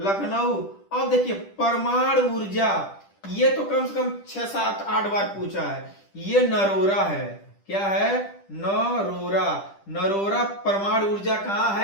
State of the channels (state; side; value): late; right; 10 ms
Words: अब देखिए परमाणु ऊर्जा, ये तो कम से कम 6, 7, 8 बार पूछा है। ये नरोरा है, क्या है, नरोरा। नरोरा परमाणु ऊर्जा कहाँ